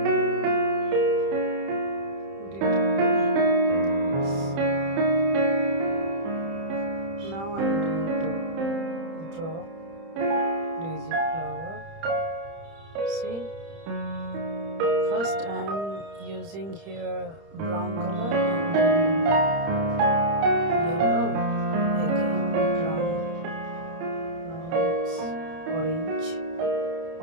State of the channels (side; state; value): left; late; 30 ms